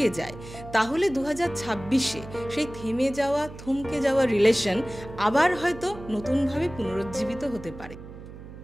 যায়, তাহলে 2026-এ সেই থেমে যাওয়া, থমকে যাওয়া রিলেশন আবার হয়তো নতুনভাবে পুনরুজ্জীবিত হতে পারে।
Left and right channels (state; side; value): noise; right; hum, 14 dB below the sound